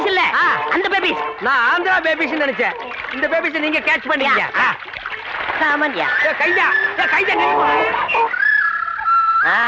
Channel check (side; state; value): both; identical; correlation 1.00